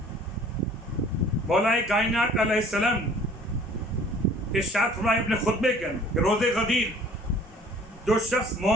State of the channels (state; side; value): normal; both; correlation 0.51